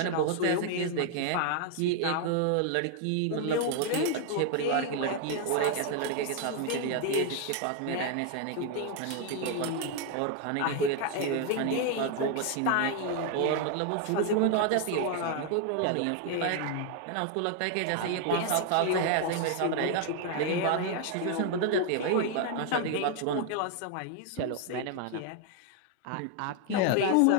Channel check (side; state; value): both; different; correlation 0.01